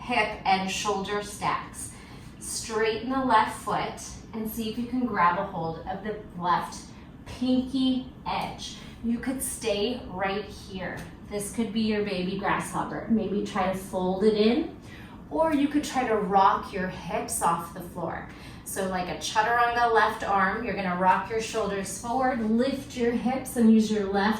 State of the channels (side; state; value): both; identical; correlation 1.00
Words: and shoulder stacks. Straighten the left foot and see if you can grab a hold of the left pinky edge. You could stay right here. This could be your baby grasshopper. Maybe try to fold it in, or you could try to rock your hips off the floor. So like a chaturanga left arm, you're gonna rock your shoulders forward, lift your hips and use your